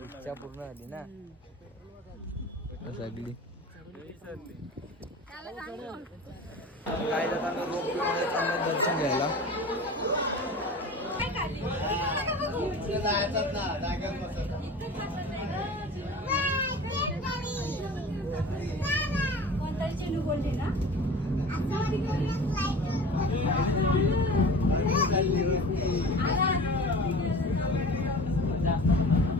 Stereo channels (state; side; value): normal; both; correlation 0.37